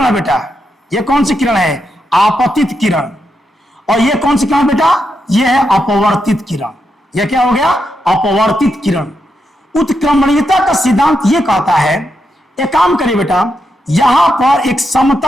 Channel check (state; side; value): normal; both; correlation 0.84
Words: है बेटा? यह कौन सी किरण है? आपतित किरण। और यह कौन सी किरण बेटा? यह है अपवर्तित किरण। यह क्या हो गया? अपवर्तित किरण। उत्क्रमणीयता का सिद्धांत यह कहता है, एक काम करिए बेटा, यहां पर एक